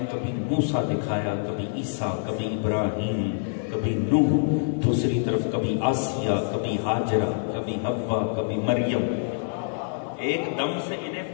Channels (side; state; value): right; silent; digital silence